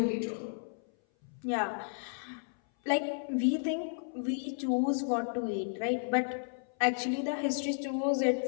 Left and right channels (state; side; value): silent; right; 56 dB below the other